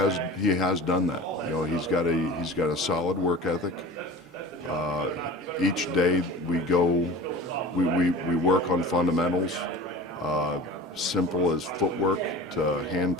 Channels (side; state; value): both; normal; correlation 0.37